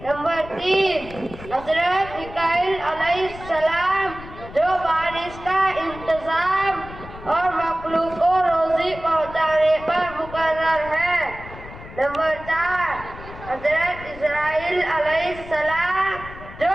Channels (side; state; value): left; noise; rumble, 15 dB below the sound